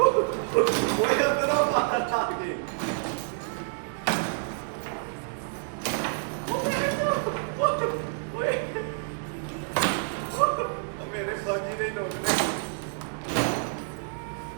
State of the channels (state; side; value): silent; left; 59 dB below the other